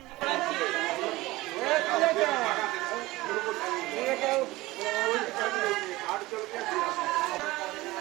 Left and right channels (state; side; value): quieter; left; 19.6 dB